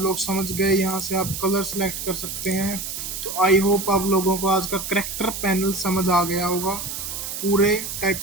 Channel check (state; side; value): noise; right; hiss, 6 dB below the sound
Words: लोग समझ गए। यहाँ से आप कलर सेलेक्ट कर सकते हैं। तो आई होप आप लोगों को आज का करैक्टर पैनल समझ आ गया होगा। पूरे